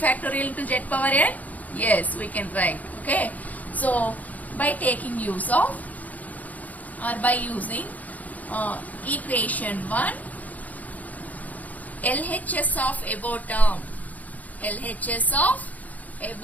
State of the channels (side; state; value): right; late; 0.077 ms